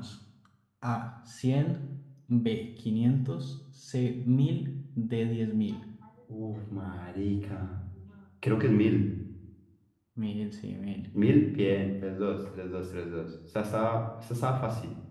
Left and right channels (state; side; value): identical; both; correlation 1.00